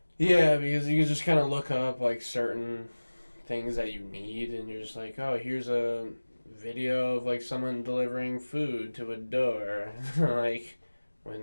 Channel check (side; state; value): both; inverted; correlation -1.00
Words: Yeah, because you can just kind of look up like certain things that you need, and you're just like, oh, here's a video of like someone delivering food to a door, like